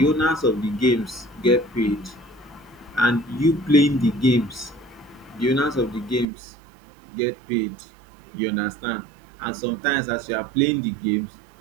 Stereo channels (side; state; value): left; drops out; at 6.2 s